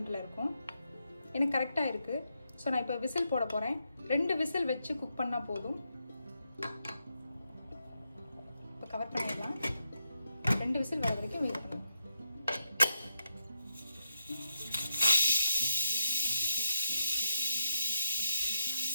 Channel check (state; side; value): inverted; both; correlation -0.83